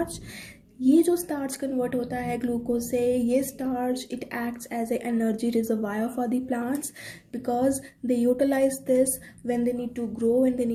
ये जो starch convert होता है glucose से, ये starch it acts as a energy reservoir for the plants, because they utilise this when they need to grow and they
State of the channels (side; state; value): both; identical; correlation 1.00